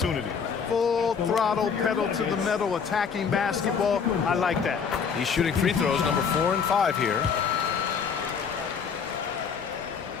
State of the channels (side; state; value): right; quieter; 6.3 dB